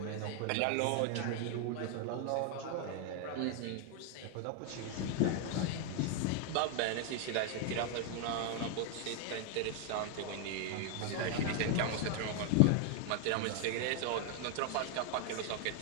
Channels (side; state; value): both; different; correlation 0.00